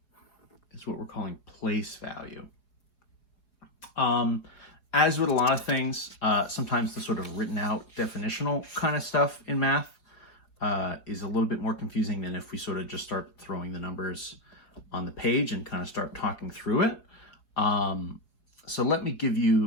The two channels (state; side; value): late; right; 4.8 ms